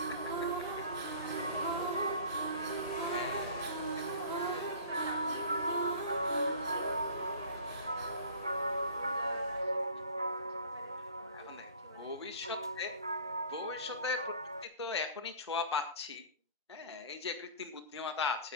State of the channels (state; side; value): inverted; both; correlation -0.44